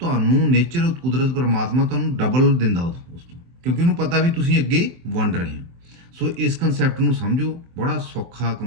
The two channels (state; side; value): late; left; 23 ms